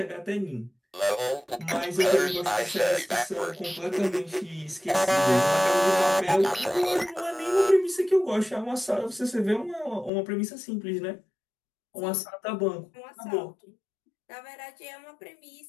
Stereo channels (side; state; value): right; drops out; at 10.1 s